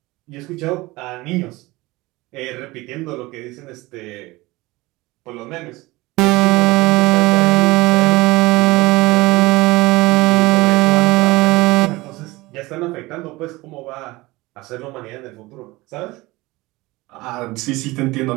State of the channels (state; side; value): quieter; left; 21.0 dB